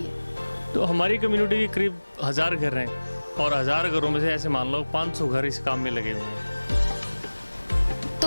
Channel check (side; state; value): both; inverted; correlation -1.00